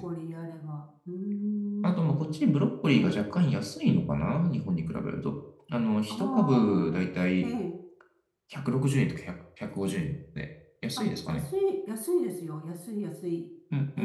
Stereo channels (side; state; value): both; identical; correlation 1.00